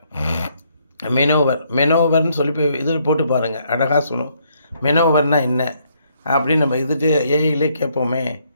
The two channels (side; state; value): both; inverted; correlation -0.71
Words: மெனோவர்னு சொல்லி போய் இதில் போட்டு பாருங்கள், அழகாக சொல்லும் மெனோவர்னால் என்ன அப்படின்னு. நம்ம இதுட்டு ஏஐலே கேட்போமே,